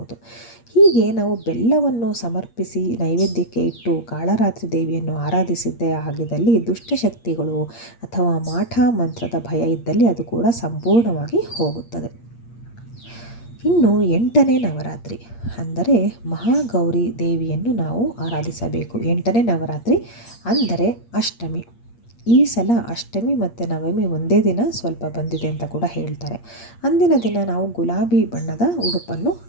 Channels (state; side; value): late; right; 8.6 ms